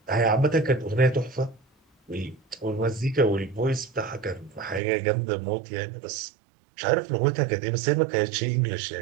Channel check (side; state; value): left; drops out; at 4.8 s